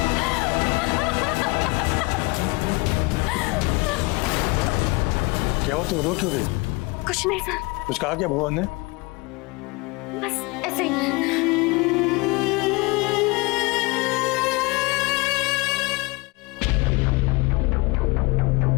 क्या हो, तुम रो क्यों रही? कुछ नहीं सर, कुछ कहा क्या भुवन ने? बस ऐसे ही।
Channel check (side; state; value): right; quieter; 25.2 dB